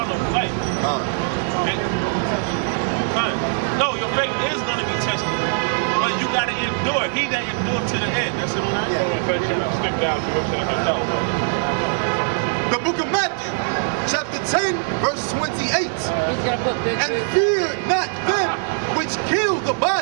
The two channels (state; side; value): silent; left; 65 dB below the other